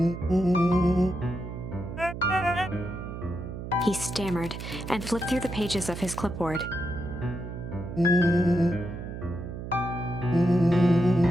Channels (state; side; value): noise; right; hum, 8 dB below the sound